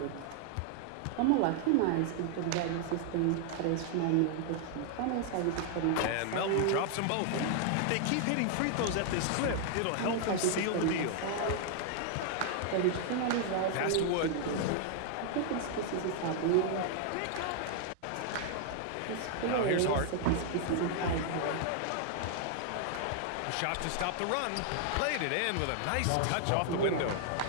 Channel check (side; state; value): both; different; correlation 0.00